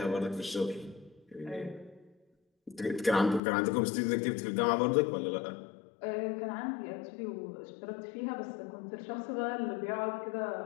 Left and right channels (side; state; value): right; drops out; at 3.4 s